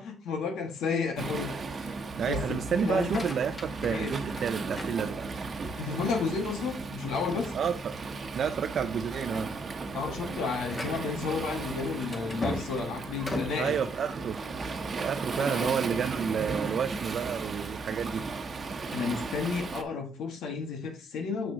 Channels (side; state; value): both; normal; correlation 0.69